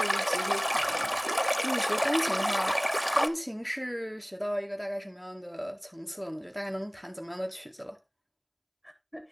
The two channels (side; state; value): both; identical; correlation 1.00